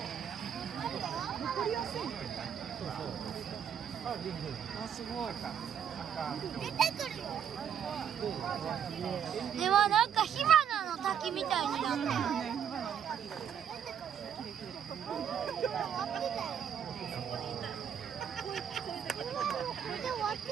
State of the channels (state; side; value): quieter; left; 8.5 dB